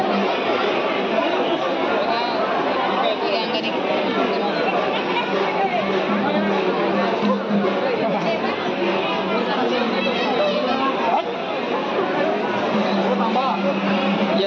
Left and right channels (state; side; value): identical; both; correlation 1.00